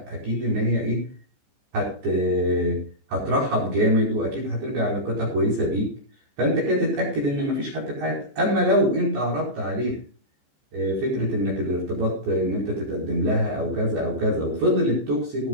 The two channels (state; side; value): late; left; 14 ms